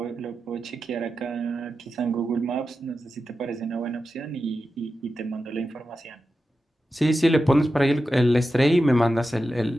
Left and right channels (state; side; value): normal; both; correlation 0.91